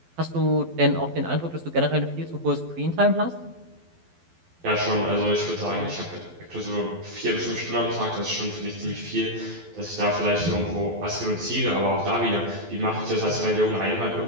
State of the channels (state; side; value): late; left; 12 ms